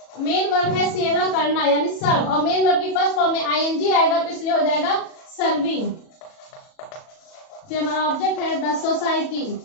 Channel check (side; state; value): right; late; 37 ms